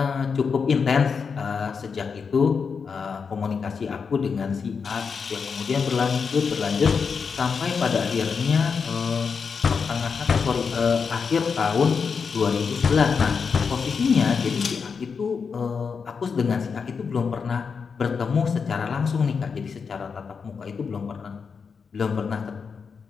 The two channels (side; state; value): right; quieter; 5.7 dB